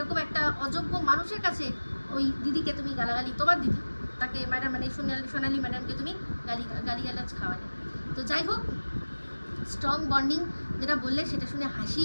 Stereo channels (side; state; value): both; inverted; correlation -1.00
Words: একটা অযোগ্য মানুষের কাছে ওই দিদিকে তুমি গালাগালি, তোমার দিদি তাকে ম্যাডাম মানে সোনালি ম্যাডামকে তুমি গালিগালাজ খাওয়ালে। তো যাই হোক, স্ট্রং বন্ডিং যেটা বললে সেটা শুনে